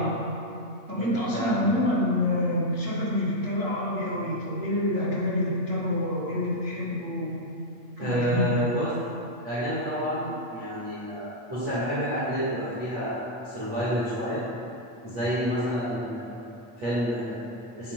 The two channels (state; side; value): late; left; 8.6 ms